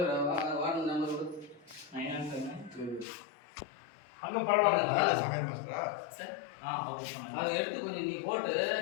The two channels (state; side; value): drops out; right; at 3.1 s